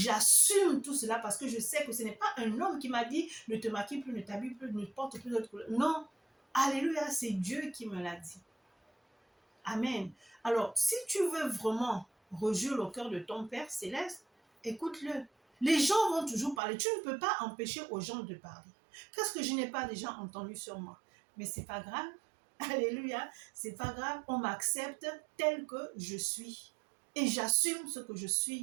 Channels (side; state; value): left; drops out; at 16.6 s